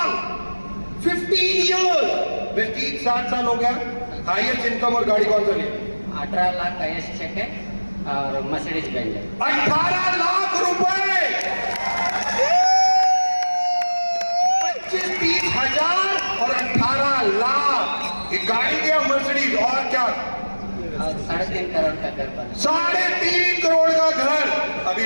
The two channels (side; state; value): both; inverted; correlation -1.00